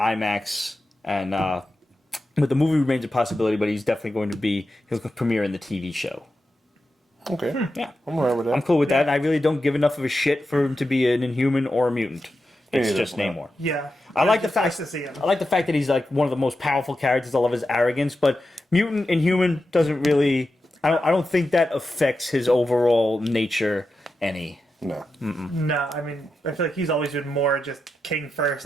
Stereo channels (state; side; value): normal; both; correlation 0.89